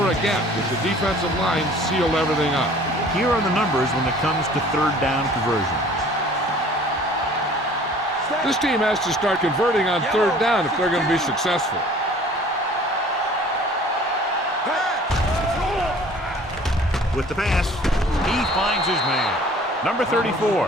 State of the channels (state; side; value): normal; both; correlation 0.50